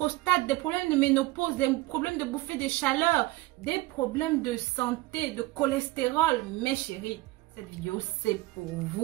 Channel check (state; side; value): quieter; left; 19.3 dB